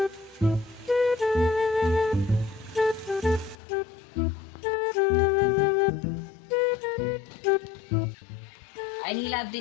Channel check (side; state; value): right; drops out; at 3.6 s